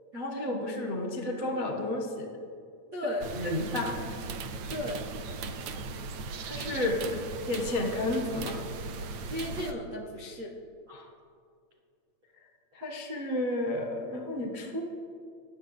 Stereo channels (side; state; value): left; late; 8.7 ms